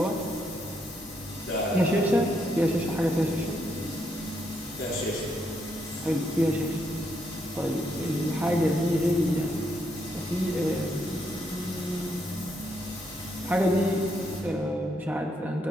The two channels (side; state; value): both; normal; correlation 0.77